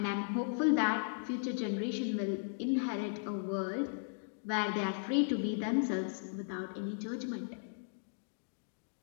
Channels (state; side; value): silent; right; digital silence